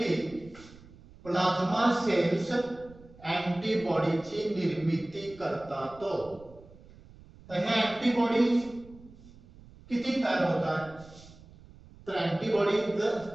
प्लाझ्मा सेल्स अँटीबॉडीची निर्मिती करतात. तर हे अँटीबॉडीज किती तयार होतात? तर अँटीबॉडीज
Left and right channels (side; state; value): right; noise; rumble, 22 dB below the sound